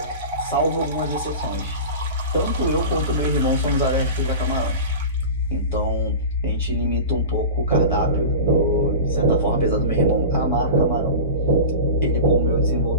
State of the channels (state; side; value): inverted; both; correlation -0.31